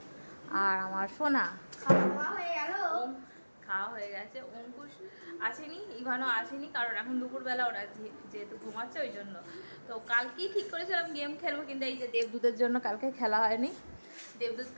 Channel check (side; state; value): both; inverted; correlation -1.00